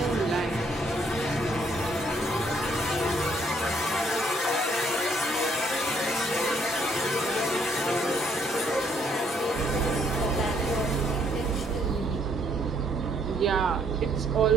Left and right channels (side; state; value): both; normal; correlation 0.68